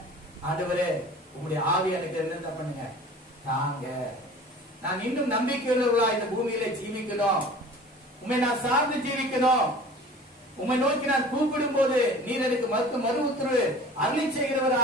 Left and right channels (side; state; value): both; normal; correlation 0.43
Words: ஆண்டவரே உங்களுடைய ஆவி எனக்கு என்ன பண்ணுங்க தாங்க, நான் இன்னும் நம்பிக்கையுள்ளவர்களா இந்த பூமியில ஜீவிக்கணும், உண்மை நான் சார்ந்து ஜீவிக்கணும், உண்மை நோக்கி நான் கூப்பிடும் போது நீர் எனக்கு மறு உத்தரவு அருளி